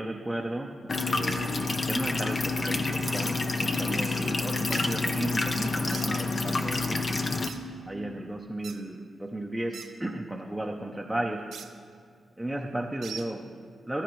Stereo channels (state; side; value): normal; both; correlation 0.90